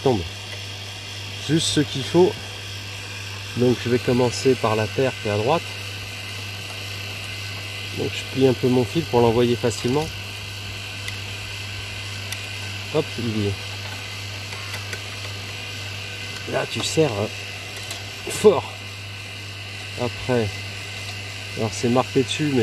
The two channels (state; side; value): identical; both; correlation 1.00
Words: Juste ce qu'il faut. Donc, je vais commencer par la terre qui est à droite. Donc, je plie un peu mon fil pour l'envoyer facilement. Hop, il y est. Là, tu serres fort. Après, alors c'est marqué dessus,